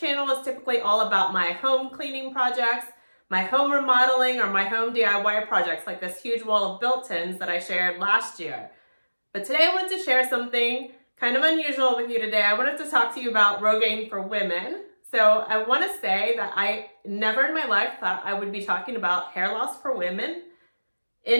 is typically all about my home cleaning projects, my home remodeling, or my home DIY projects like this huge wall of built-ins that I shared last year. But today I wanted to share something kind of unusual with you today. I wanted to talk to you about Rogaine for women. So I want to say that I never in my life thought I would be talking about hair loss for women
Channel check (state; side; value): inverted; both; correlation -1.00